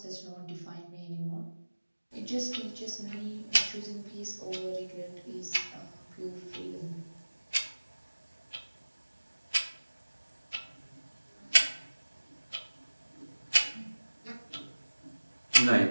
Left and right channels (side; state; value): both; inverted; correlation -1.00